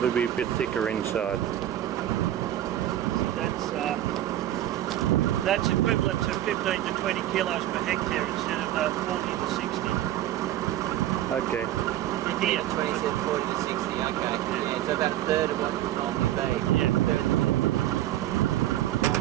to be a bit thicker inside. That's equivalent to 15 to 20 kilos per hectare instead of 40 to 60. Okay. Here. 27, 40 to 60, okay. Yeah, so about a third of what it would normally be. Yeah.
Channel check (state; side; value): quieter; left; 13.0 dB